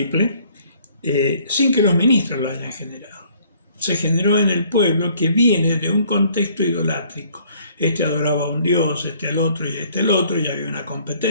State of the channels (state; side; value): inverted; both; correlation -0.60